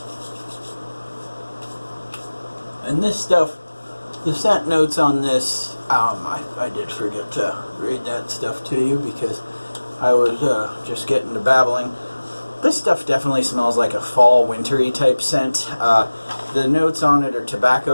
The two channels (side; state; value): both; inverted; correlation -1.00